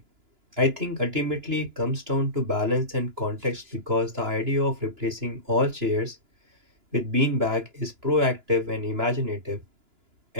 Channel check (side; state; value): left; late; 2.9 ms